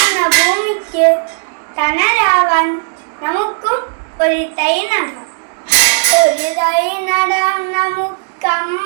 ഭൂമിക്ക് തണലാവാൻ നമുക്കും ഒരു തൈ നടാം. ഒരു തൈ നടാം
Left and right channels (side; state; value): left; silent; digital silence